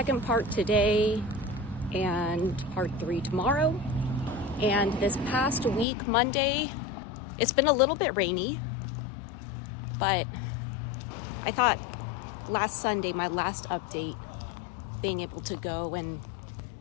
part today and part 3 tomorrow. And this past week, Monday, it's been a little bit rainy, but I thought last Sunday, my last update, being able to go and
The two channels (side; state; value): right; drops out; at 5.9 s